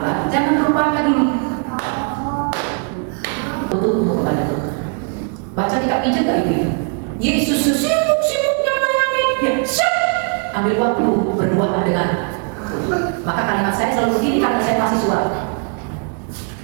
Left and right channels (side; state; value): left; quieter; 38.9 dB